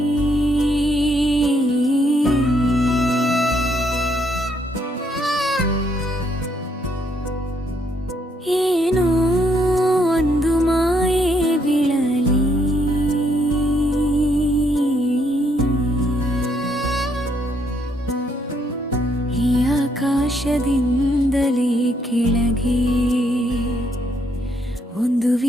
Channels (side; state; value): both; normal; correlation 0.72